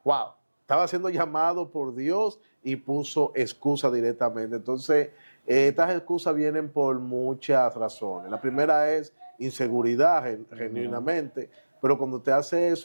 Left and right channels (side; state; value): both; inverted; correlation -1.00